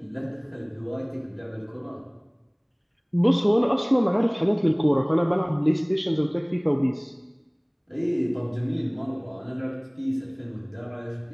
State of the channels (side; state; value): both; identical; correlation 1.00